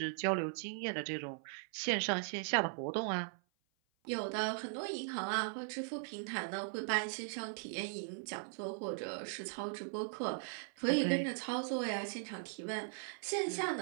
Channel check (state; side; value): silent; left; 52 dB below the other